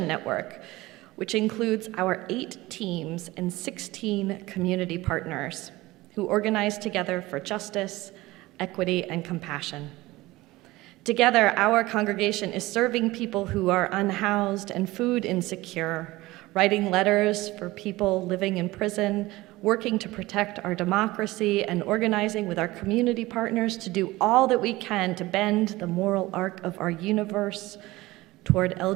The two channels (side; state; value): left; quieter; 19.3 dB